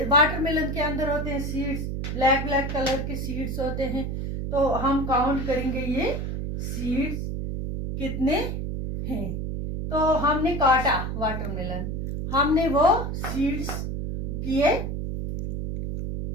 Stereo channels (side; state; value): right; noise; hum, 3 dB below the sound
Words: वाटरमेलन के अंदर होते हैं सीड्स, ब्लैक ब्लैक कलर के सीड्स होते हैं। तो हम काउंट करेंगे ये सीड्स कितने हैं। तो हमने काटा वाटरमेलन, हमने वो सीड्स किए